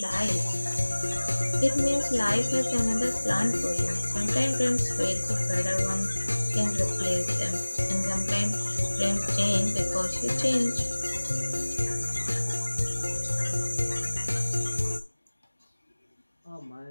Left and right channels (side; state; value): both; inverted; correlation -1.00